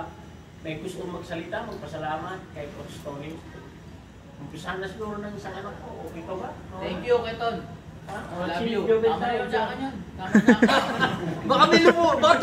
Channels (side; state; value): both; identical; correlation 1.00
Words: may gusto magsalita, magpasalamat kay Coach Tony. Umpisahan na siguro ng isang anak ko. Okay ka ba? Thank you, Keton. Love you. Tayo dyan. Baka may baka